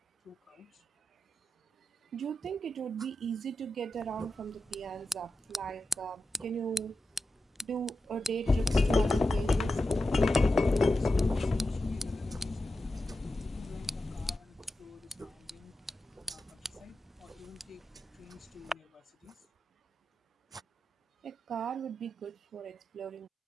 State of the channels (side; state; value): both; normal; correlation 0.90